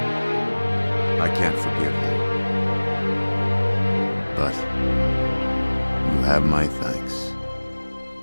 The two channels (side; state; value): both; inverted; correlation -1.00